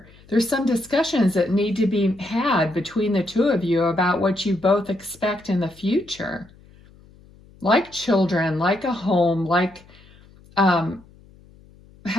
There's some discussions that need to be had between the two of you about what you both expect in the future. Like children, like a home, like can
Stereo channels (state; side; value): noise; left; hum, 26 dB below the sound